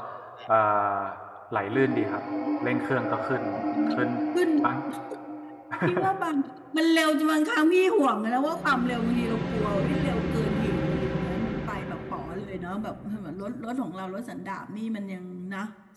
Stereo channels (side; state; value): both; identical; correlation 1.00